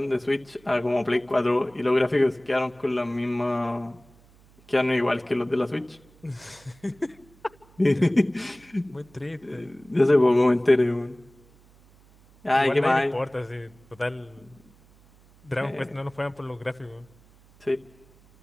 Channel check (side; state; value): right; noise; hum, 28 dB below the sound